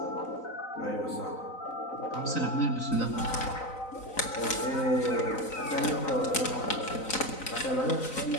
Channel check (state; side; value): late; right; 3.9 ms